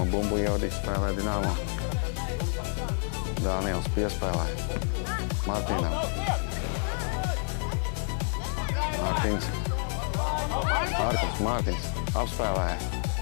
Bumbu ievadīs spēlē Dinamo. Daniels piespēlē Martīnam. Mārtiņš. Mārtiņš apspēlēja.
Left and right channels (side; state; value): right; silent; 55 dB below the other